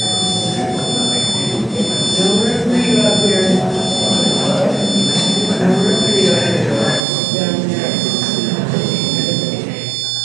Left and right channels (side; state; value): left; drops out; at 7.0 s